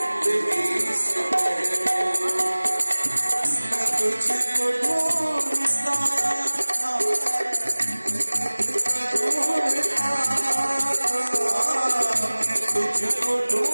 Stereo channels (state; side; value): inverted; both; correlation -1.00